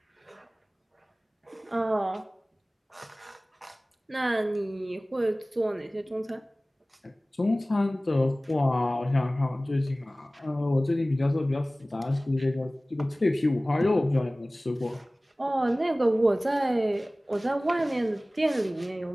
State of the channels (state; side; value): normal; both; correlation 0.98